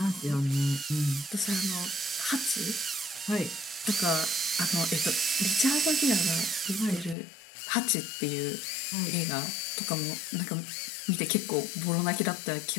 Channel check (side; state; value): right; drops out; at 7.2 s